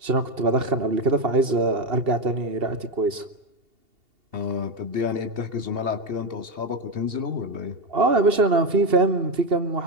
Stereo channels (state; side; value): late; left; 2.8 ms